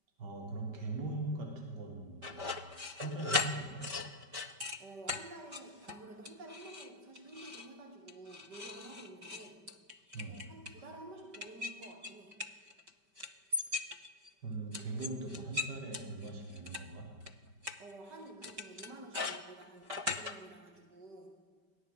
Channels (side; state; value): left; late; 5.1 ms